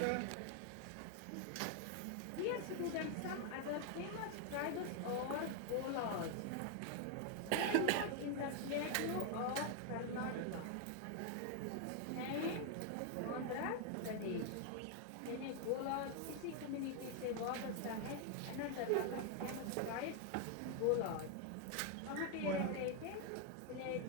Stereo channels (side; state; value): both; different; correlation 0.00